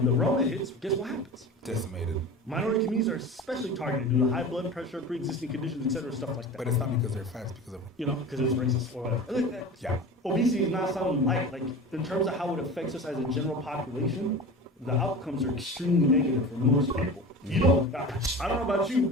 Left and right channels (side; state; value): both; normal; correlation 0.33